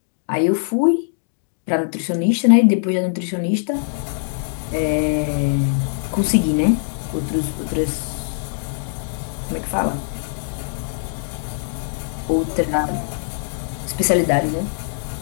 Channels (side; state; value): right; silent; digital silence